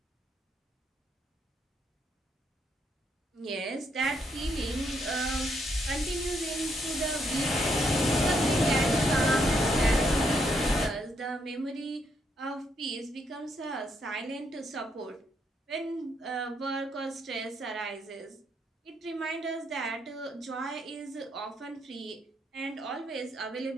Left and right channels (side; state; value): both; normal; correlation 0.75